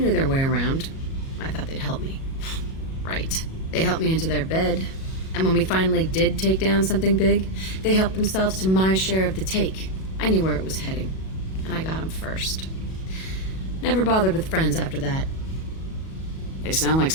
their way around. I thought they'd help me. Right. They helped me into their bed, and when we finally did take down something big, they helped themselves to my share of the take. I knew where it was heading, and I got them first. Never bothered with friends after that. They sound like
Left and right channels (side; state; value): right; late; 37 ms